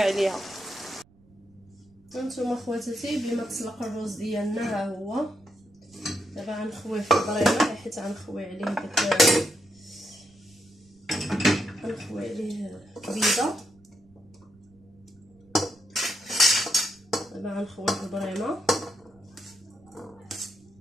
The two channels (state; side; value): noise; right; rumble, 29 dB below the sound